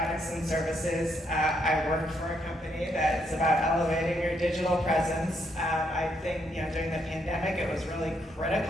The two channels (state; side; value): normal; both; correlation 0.75